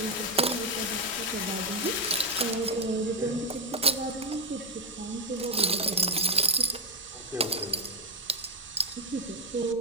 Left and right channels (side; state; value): both; normal; correlation 0.05